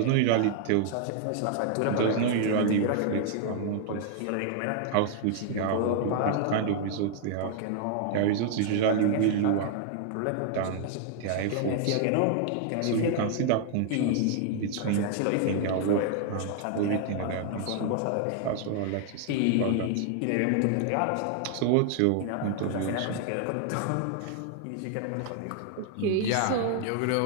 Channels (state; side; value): different; both; correlation 0.00